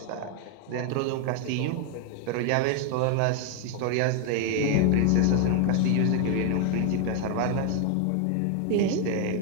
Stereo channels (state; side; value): different; both; correlation 0.00